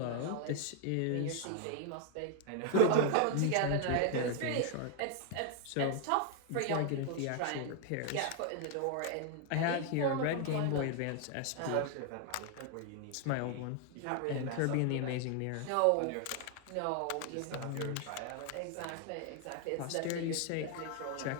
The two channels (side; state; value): both; different; correlation 0.00